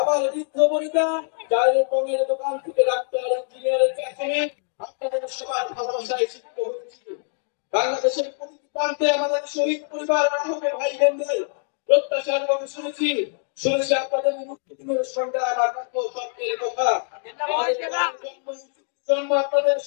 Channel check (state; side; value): silent; right; 63 dB below the other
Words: বৃদ্ধ বনিতা, চায়ের পঙের দোকান থেকে ডাক্তার, ইঞ্জিনিয়ার, চা শ্রমিক, আপনাদের সবার ভালোবাসায় শিক্ষিত হয়েছি। বাংলাদেশের প্রতিটি প্রান্তে আমাদের শহীদ পরিবার, আহত ভাই বোনদের প্রত্যাশার কথা শুনেছি। শুনেছি আপনাদের মুক্তির সংগ্রাম আকাঙ্ক্ষ স্বপ্নের কথা। আমাদের জন্ম আপনাদের